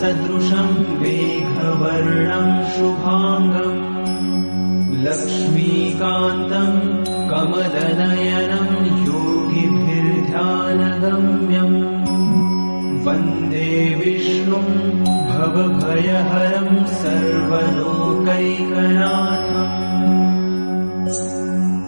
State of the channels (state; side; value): inverted; both; correlation -1.00